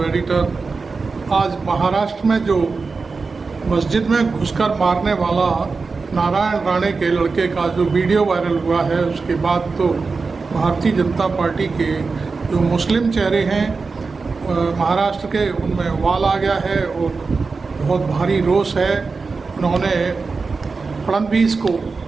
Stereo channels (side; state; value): left; quieter; 4.4 dB